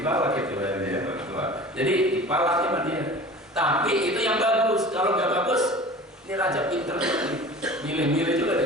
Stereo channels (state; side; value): normal; both; correlation 0.40